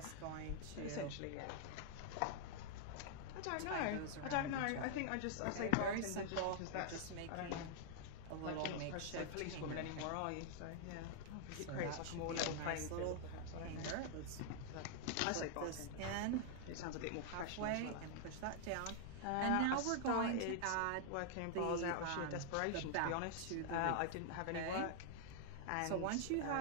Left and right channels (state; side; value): different; both; correlation 0.00